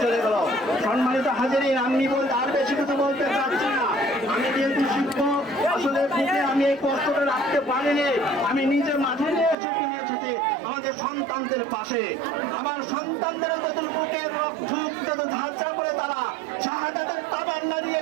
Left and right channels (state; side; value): drops out; left; at 9.6 s